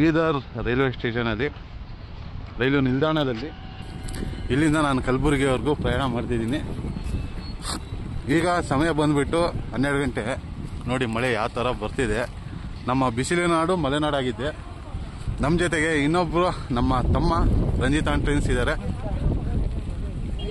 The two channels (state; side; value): identical; both; correlation 1.00